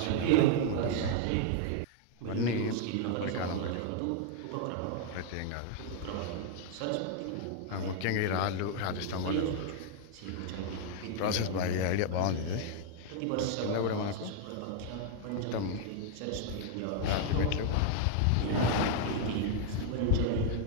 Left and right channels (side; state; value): both; different; correlation 0.00